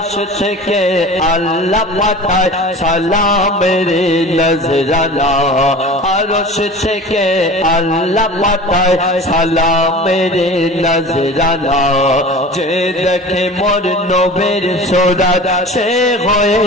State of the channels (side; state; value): both; normal; correlation 0.38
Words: থেকে আল্লাহ পাঠায় সালামের নজরানা আরশ থেকে আল্লাহ পাঠায় সালামের নজরানা যে দেখে মোর নবীর সুরাত সে হয়ে